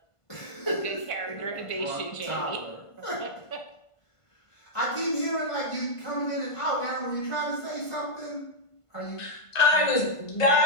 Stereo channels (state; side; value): late; right; 1.5 ms